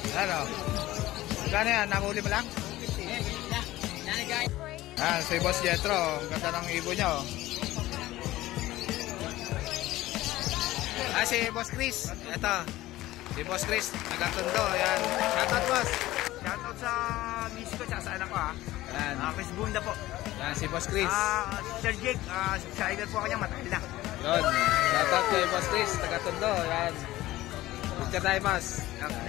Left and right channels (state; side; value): quieter; right; 16.6 dB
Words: Ano? Gano'n yan? Namuli mo lang? Si Boss Jetro. Ang ganda ng ibon niya oh. Si Boss Chris. Ito. Si Boss Chris. Nagatundo. Ayan. Shoutout boss. Shoutout sa miss ko at sa anak ko ha. Ayan. Chris Bunda po. Ayan si Boss Chris. Sir Jake, subscriber po kanya, matagal na. Yun. Shoutout kay Boss Chris. Nagatundo. Ayan. Picture tayo boss.